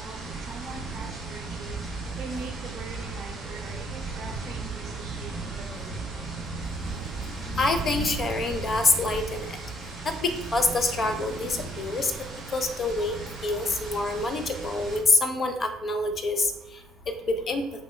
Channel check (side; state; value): both; normal; correlation 0.68